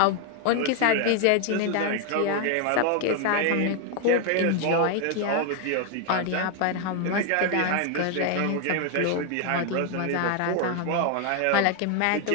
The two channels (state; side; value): different; both; correlation 0.01